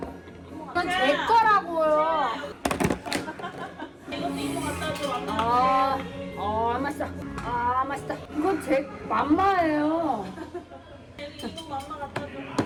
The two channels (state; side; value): identical; both; correlation 1.00